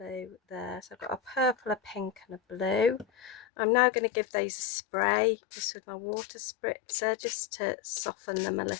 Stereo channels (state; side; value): drops out; right; at 3.4 s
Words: there. So I've got a purple, a pink and a blue. I'm now going to give these a spray just with my water spritzer just to soften them a